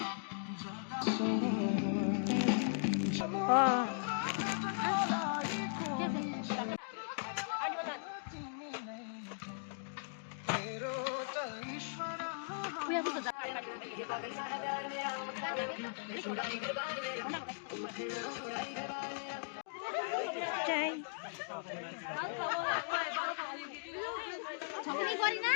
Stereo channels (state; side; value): silent; right; digital silence